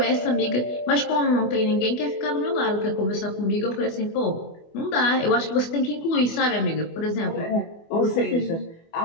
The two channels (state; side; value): late; right; 24 ms